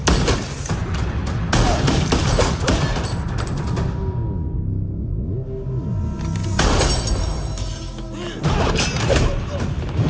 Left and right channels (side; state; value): both; identical; correlation 1.00